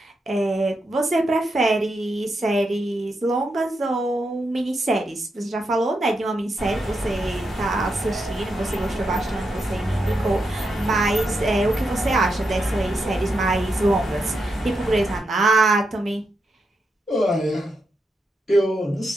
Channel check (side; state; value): both; normal; correlation 0.84